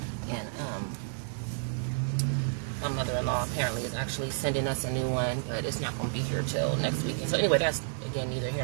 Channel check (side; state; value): left; silent; digital silence